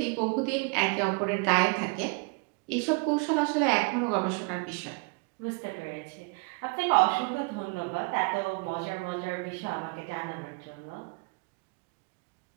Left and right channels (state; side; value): quieter; left; 31.1 dB